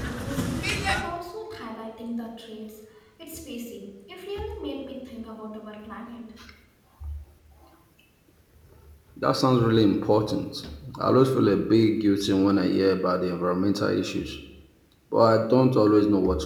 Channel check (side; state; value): both; identical; correlation 1.00